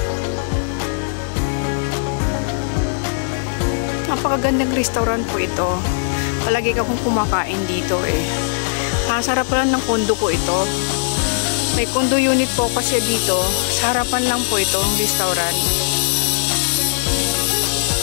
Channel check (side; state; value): right; silent; digital silence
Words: Napakagandang restaurant po ito. Palagi akong kumakain dito eh. Sarap lang ng kondo ko ito. May condo unit po kasi dito. Sa harapan lang po ito ang restaurant.